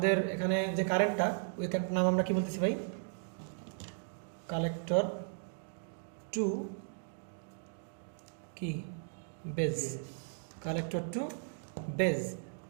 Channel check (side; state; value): left; silent; digital silence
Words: এখানে যে কারেন্টটা, ওই কারেন্টের নাম আমরা কি বলতেছি ভাই? কালেক্টর টু কি বেজ, কালেক্টর টু বেজ।